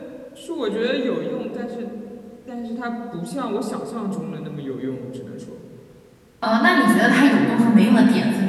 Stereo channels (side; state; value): both; identical; correlation 1.00